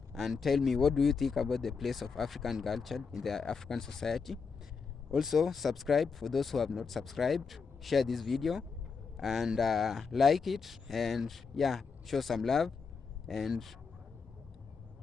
and tell me, what do you think about the place of African culture in the African society. Also, subscribe for those who have not subscribed. Share this video and like it, and yeah, show some love. And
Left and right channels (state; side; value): quieter; right; 5.3 dB